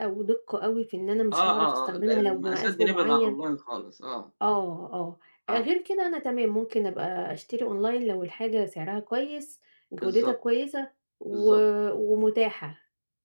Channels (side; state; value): both; inverted; correlation -1.00